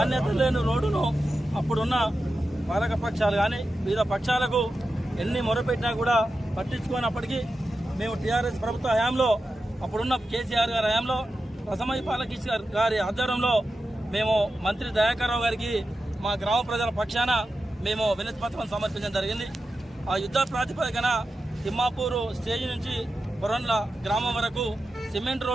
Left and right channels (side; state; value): both; normal; correlation 0.91